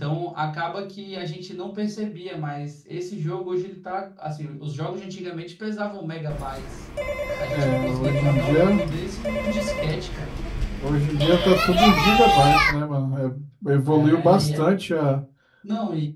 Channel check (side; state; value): both; identical; correlation 1.00